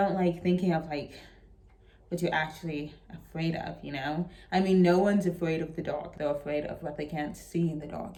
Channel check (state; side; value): identical; both; correlation 1.00